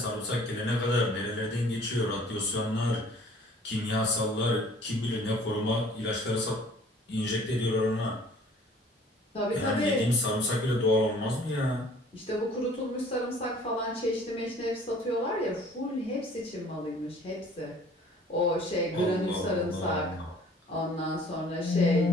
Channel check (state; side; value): normal; both; correlation 0.53